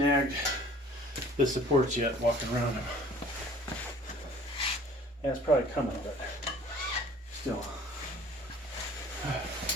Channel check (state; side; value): normal; both; correlation 0.51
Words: the supports yet walking around them. Yeah, it's probably coming, but still.